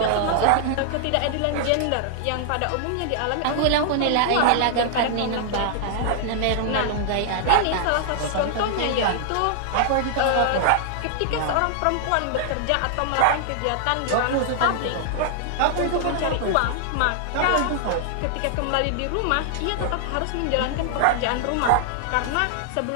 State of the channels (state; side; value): different; both; correlation -0.01